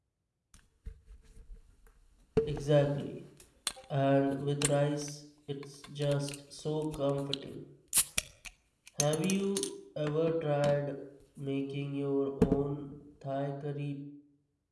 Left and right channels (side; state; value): both; identical; correlation 1.00